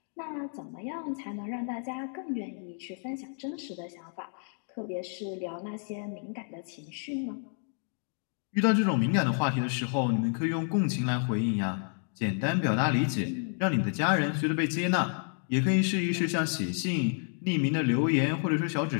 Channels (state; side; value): silent; right; 58 dB below the other